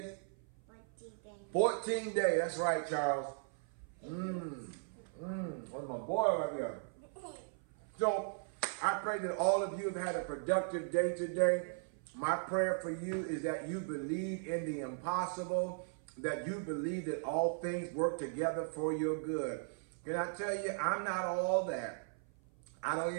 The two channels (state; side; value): silent; left; 53 dB below the other